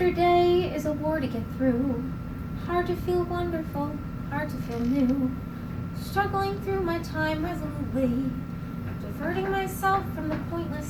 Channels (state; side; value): identical; both; correlation 1.00